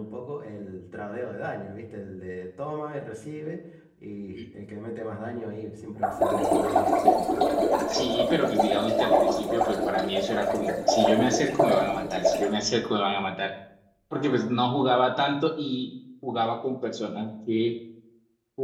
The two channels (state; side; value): identical; both; correlation 1.00